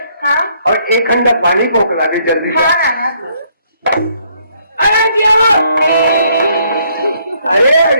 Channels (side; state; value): both; inverted; correlation -0.68